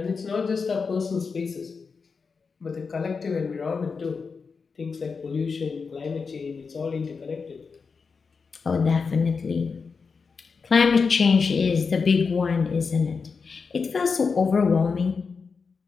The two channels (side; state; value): right; quieter; 5.1 dB